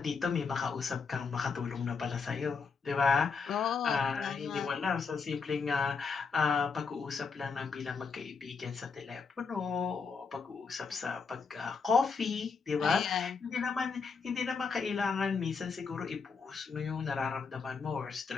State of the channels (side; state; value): right; quieter; 5.3 dB